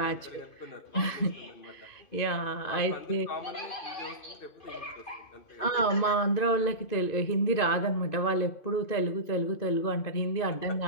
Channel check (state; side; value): late; right; 2.5 ms